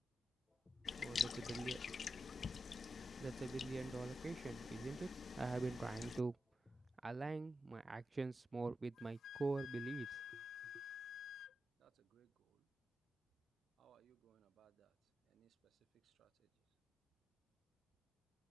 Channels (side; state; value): both; normal; correlation 0.88